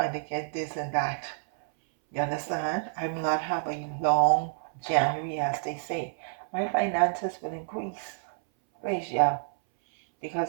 to get this and that. You understand? I will not have a long January, as they say. My finances will increase. Praise Yah.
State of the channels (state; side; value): silent; left; 59 dB below the other